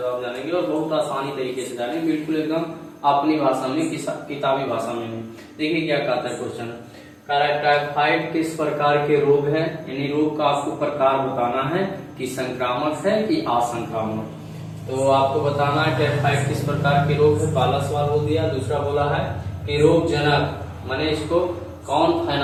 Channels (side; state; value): both; identical; correlation 1.00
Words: जानेंगे और बहुत आसानी तरीके से जानेंगे, बिल्कुल एकदम अपनी भाषा में, किताबी भाषा में। देखिए क्या कहता है क्वेश्चन। टाइफाइड किस प्रकार के रोग है, यानी रोग का आपको प्रकार बताना है कि संक्रामक है कि असंक्रामक। तो आपको बताना है टाइफाइड किस प्रकार के रोग है, पहला सवाल हो दिया। दूसरा बोला है कि रोग जनक, माने इसको कौन